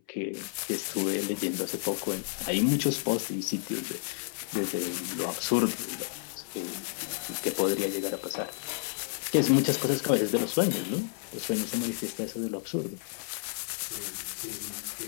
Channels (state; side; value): silent; right; 57 dB below the other